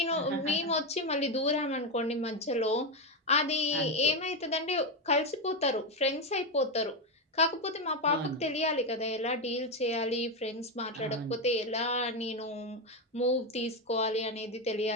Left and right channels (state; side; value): normal; both; correlation 0.10